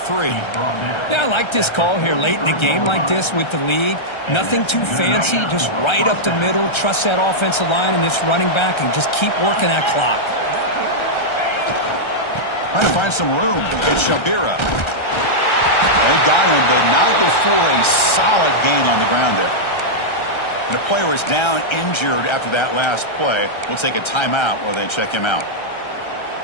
Yeah, I like this call here late in the game like this with the lead. Nothing too fancy, just right up the middle. Trust that offensive line and this running back and just keep working that clock. Trying to find some room. It's Shabira. They got him, but not before a solid gain on the ground there. And a player is down injured after that last play. We'll take a timeout while they check him out.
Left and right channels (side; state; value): right; late; 1.3 ms